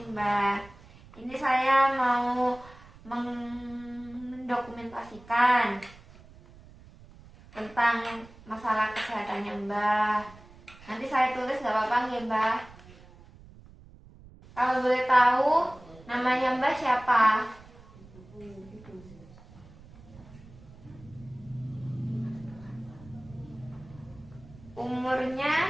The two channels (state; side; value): noise; right; rumble, 21 dB below the sound